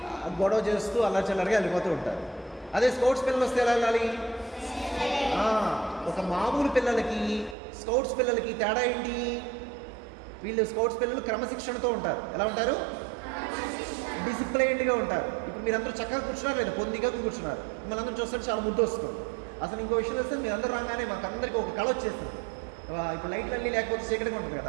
గొడవ చేస్తూ అల్లచిల్లరగా వెళ్ళిపోతూ ఉంటారు. అదే స్పోర్ట్స్ పిల్లలు వస్తే ఎలా వెళ్ళాలి? ఒక మామూలు పిల్లలకి స్కౌట్స్ పిల్లలకి తేడా ఏంటి? వీళ్ళు స్కౌట్స్ పిల్లలు క్రమశిక్షణతో ఉంటారు. ఎలా ఉంటారు? డిసిప్లైన్డ్గా ఉంటారు. ఇప్పుడు మీరందరూ చక్కగా కూర్చున్నారు లేదా? పొందిగా కూర్చున్నారు. మిమ్మల్ని అందరూ చూస్తుంటే చాలా ముద్దు వస్తుంది. అసలు ఇంకో విషయం వస్తే మీరందరూ రాగానే మాకు అందరికీ ఒక కళ వచ్చేస్తుంది. ఇప్పుడు లైట్లు అన్నీ లేకపోతే చీకటిగా ఉంటుంది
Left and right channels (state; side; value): drops out; left; at 7.6 s